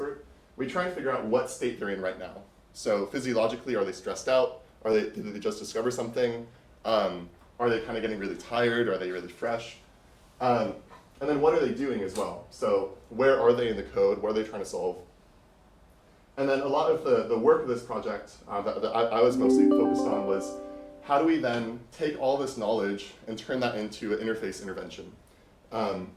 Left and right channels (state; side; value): identical; both; correlation 1.00